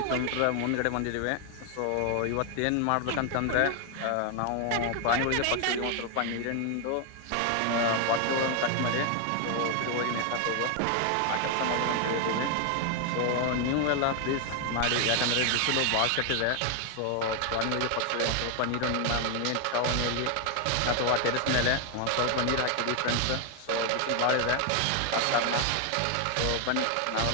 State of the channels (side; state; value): both; different; correlation 0.00